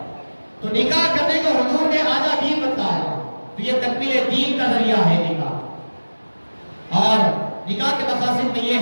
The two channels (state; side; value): inverted; both; correlation -1.00